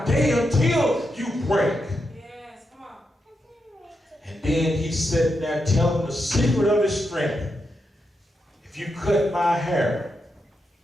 day until you break. Yes, come on. And then he sat there telling the secret of his strength. If you cut my hair,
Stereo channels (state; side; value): normal; both; correlation 0.85